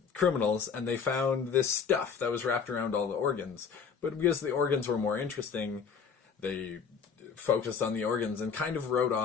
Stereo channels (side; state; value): right; quieter; 6.3 dB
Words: criminals, and they found this stuff that was wrapped around all the organs. But because the organs were more interesting, they focused on the organs and kind of wrote